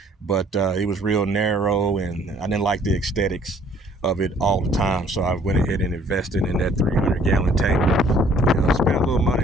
but it was real narrow and I didn't like the aesthetics of it all the time, so I went ahead and invested in that 300-gallon tank. You know, spent a little money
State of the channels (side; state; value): both; normal; correlation 0.59